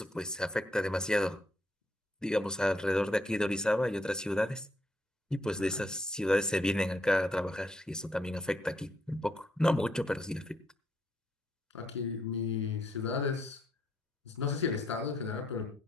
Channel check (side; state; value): both; normal; correlation 0.75